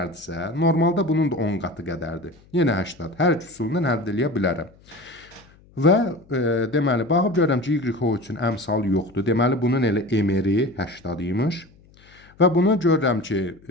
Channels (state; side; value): noise; left; hum, 28 dB below the sound